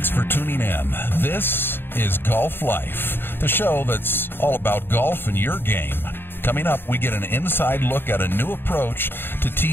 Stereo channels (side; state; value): right; late; 0.10 ms